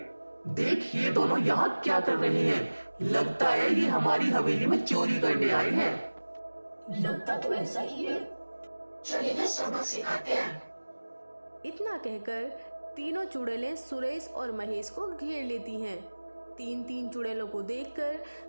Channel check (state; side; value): inverted; both; correlation -1.00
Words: देख, ये दोनों यहाँ क्या कर रहे हैं? लगता है ये हमारी हवेली में चोरी करने आए हैं। लगता तो ऐसा ही है। चलिए ना सबक सिखाते हैं। इतना कहकर तीनों चुड़ैलें सुरेश और महेश को घेर लेती हैं। 3 चुड़ैलों को देखकर